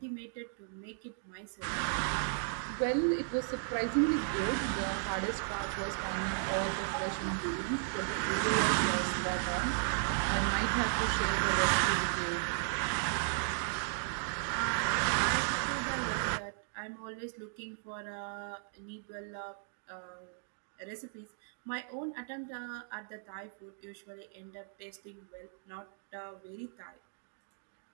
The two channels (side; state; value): left; silent; digital silence